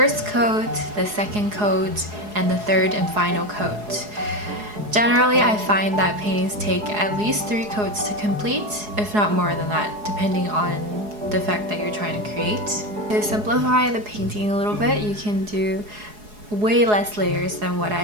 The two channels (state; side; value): late; left; 4.8 ms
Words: coat, the second coat, and the third and final coat. Generally, I find that paintings take at least 3 coats to complete, if not more than that, depending on the effect that you're trying to create. To simplify the painting a little bit, you can do way less layers than what I